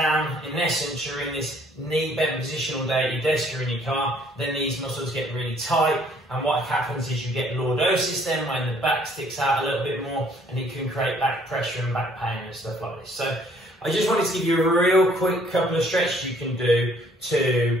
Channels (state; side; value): normal; both; correlation 0.61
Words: in essence, you're in this knee bent position all day at your desk or in your car, then these muscles get really tight, and what happens is you get lordosis then when the back sticks out a little bit more, and it can create back pressure and back pain and stuff like this. So I just wanted to give you a real quick couple of stretches you can do to